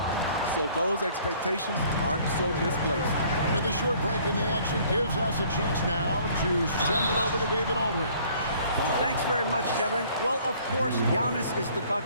So those expectations aren't so misplaced. With a short break in the action gives us a chance now to send it over to David Aldridge. Thanks very much, Kevin. Well, of course, Giannis is the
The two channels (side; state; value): both; inverted; correlation -0.57